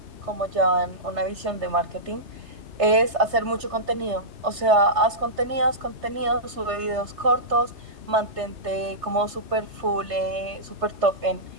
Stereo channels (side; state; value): left; late; 3.3 ms